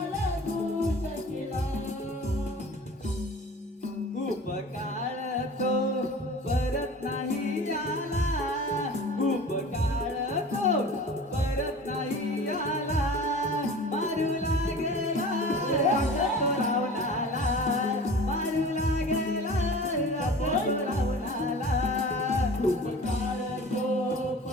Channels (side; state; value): both; normal; correlation 0.40